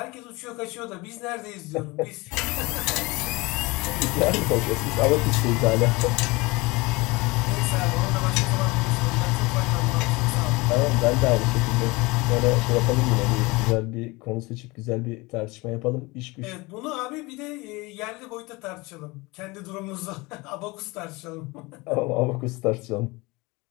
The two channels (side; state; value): right; quieter; 24.0 dB